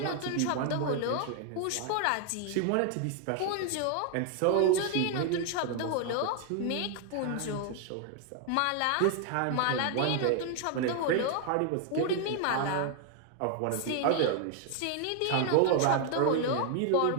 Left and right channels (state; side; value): different; both; correlation 0.00